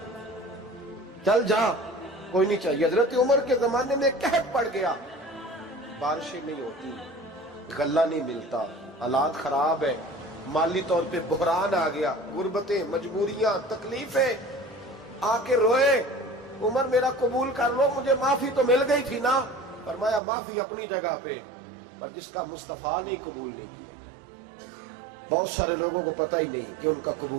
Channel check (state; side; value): drops out; left; at 20.2 s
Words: چل جا کوئی نہیں چاہیے۔ حضرت عمر کے زمانے میں قحط پڑ گیا، بارشیں نہیں ہوتی، غلہ نہیں ملتا، حالات خراب ہے، مالی طور پہ بحران آ گیا، غربتیں، مجبوریاں، تکلیفیں، آ کے روئے، عمر میرا قبول کر لو، مجھے معافی تو مل گئی تھی نا۔ فرمایا معافی اپنی جگہ پہ، پر جس کا مصطفیٰ نے قبول نہیں کیا۔ بہت سارے لوگوں کو پتہ ہی نہیں کہ ان کا